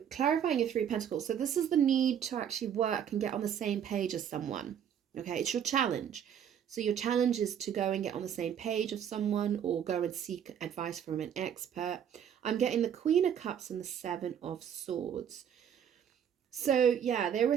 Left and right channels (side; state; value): left; quieter; 8.8 dB